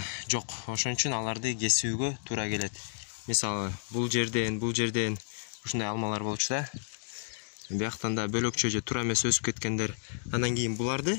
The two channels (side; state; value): right; silent; digital silence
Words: жок. Ошон үчүн аларды кесүүгө туура келет. Мисалы, бул жерден ушундай алмалар болчу да. Бияктан да бөлөкчө же туура эмес өсүп кеткендер. Андан кийин